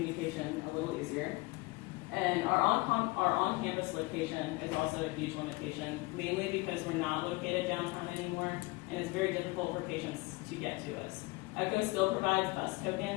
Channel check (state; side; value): quieter; right; 24.0 dB